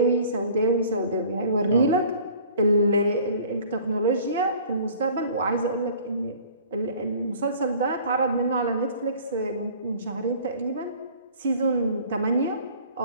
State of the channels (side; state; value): both; inverted; correlation -0.49